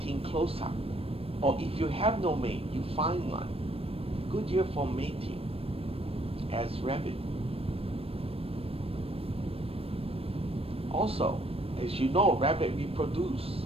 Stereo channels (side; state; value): left; late; 0.28 ms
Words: closer. Or if you have no mate, you find one. Good year for mating as rabbit. Also, as you know, rabbit reproduce